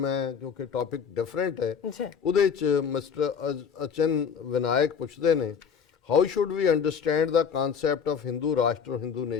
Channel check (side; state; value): right; quieter; 6.9 dB